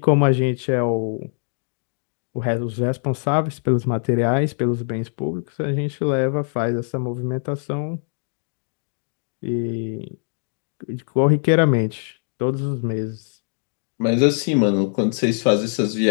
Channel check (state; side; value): silent; right; digital silence